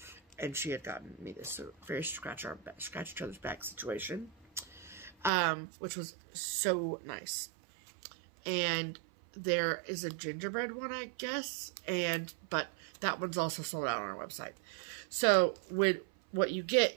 and she had gotten me this very scratch each other's back situation, which was so nice. And there is a gingerbread one, I guess, but that one's also sold out on our website. So what you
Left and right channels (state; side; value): drops out; left; at 5.3 s